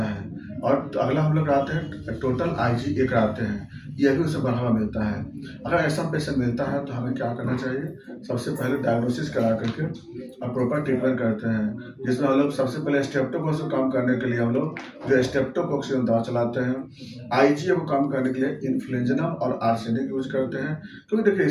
है। और अगला हम लोग कराते हैं टोटल आईजीए कराते हैं, यह भी उसे बढ़ावा मिलता है। अगर ऐसा पेशेंट मिलता है तो हमें क्या करना चाहिए, सबसे पहले डायग्नोसिस करा करके और प्रॉपर ट्रीटमेंट करते हैं, जिसमें हम लोग सबसे पहले स्ट्रेप्टोकोकस को कम करने के लिए हम लोग जो स्ट्रेप्टोकोक्सिन दवा चलाते हैं। आईजीए को कम करने के लिए इन्फ्लुएंजा और आर्सेनिक यूज करते हैं। क्योंकि देखिए,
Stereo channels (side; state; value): both; identical; correlation 1.00